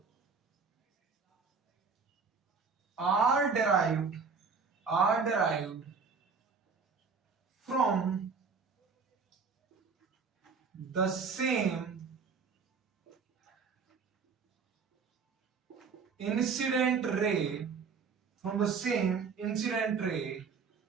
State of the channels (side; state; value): left; quieter; 5.3 dB